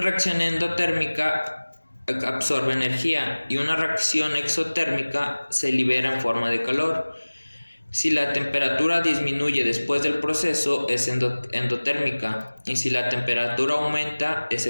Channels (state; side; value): inverted; both; correlation -1.00